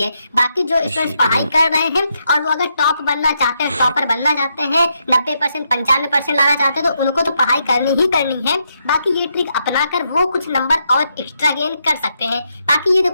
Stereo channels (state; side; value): inverted; both; correlation -0.80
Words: है। बाकी जो स्टूडेंट्स पढ़ाई कर रहे हैं और वो अगर टॉप बनना चाहते हैं, टॉपर बनना चाहते हैं, 90% 95% लाना चाहते हैं, तो उनको तो पढ़ाई करनी ही करनी है। बाकी ये ट्रिक अपनाकर वो कुछ नंबर और एक्स्ट्रा गेन कर सकते हैं। बाकी ये